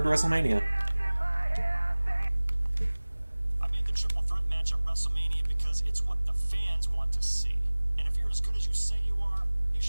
to WrestleMania. I made the triple threat match at WrestleMania because it's what the fans want to see. And if you're as good as you say you are, you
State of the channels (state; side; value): inverted; both; correlation -1.00